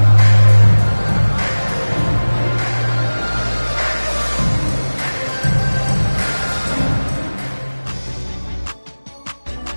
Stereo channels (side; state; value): both; inverted; correlation -1.00